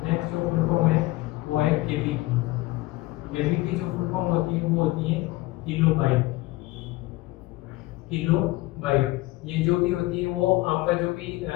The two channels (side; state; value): right; quieter; 19.4 dB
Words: नेक्स्ट जो फुल फॉर्म है वो है केबी की। केबी की जो फुल फॉर्म होती है वो होती है किलोबाइट, किलोबाइट। ये जो भी होती है वो आपका जो भी